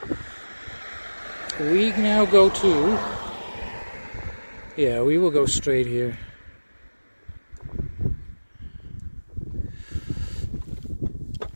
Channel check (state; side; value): inverted; both; correlation -1.00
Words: We now go to... Yeah, we will go straight here.